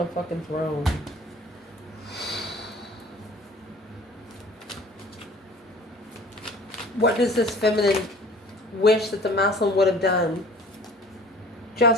fucking throne. What does this feminine wish that the masculine would have done?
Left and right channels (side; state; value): both; normal; correlation 0.47